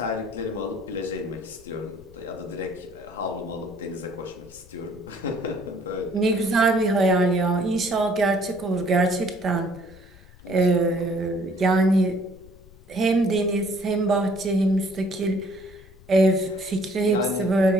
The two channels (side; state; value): left; noise; rumble, 23 dB below the sound